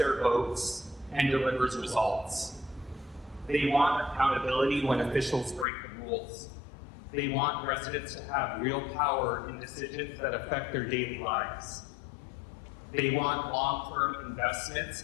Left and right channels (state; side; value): drops out; right; at 5.7 s